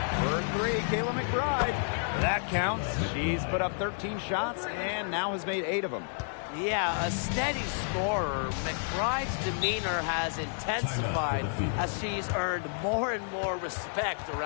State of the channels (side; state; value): right; silent; digital silence